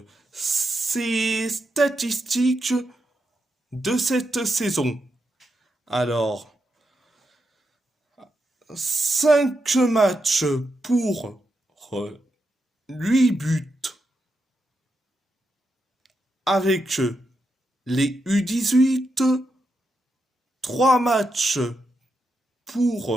ces statistiques de cette saison. Alors, 5 matchs pour 8 buts avec les U18, 3 matchs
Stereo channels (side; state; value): both; normal; correlation 0.85